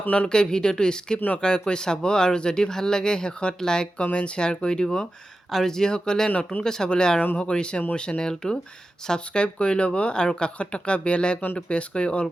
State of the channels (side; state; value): both; normal; correlation 0.93